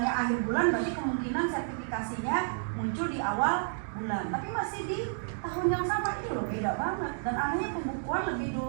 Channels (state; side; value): silent; left; digital silence